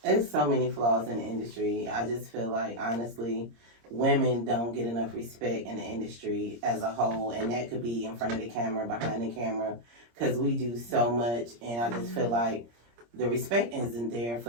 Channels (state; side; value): late; left; 26 ms